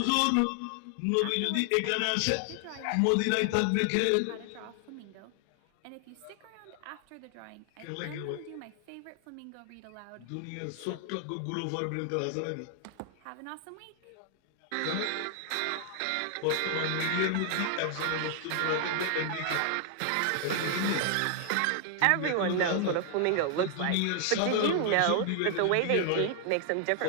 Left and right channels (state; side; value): different; both; correlation 0.00